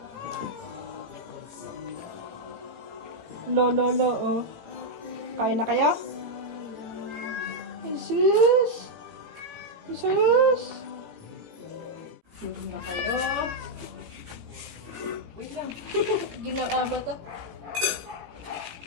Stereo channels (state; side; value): late; left; 18 ms